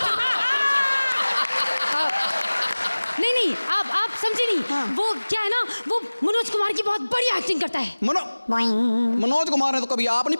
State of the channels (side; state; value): both; inverted; correlation -1.00